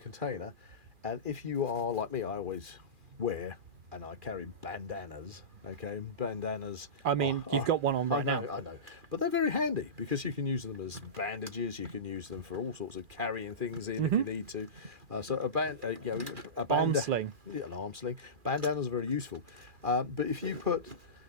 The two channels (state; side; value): late; left; 2.4 ms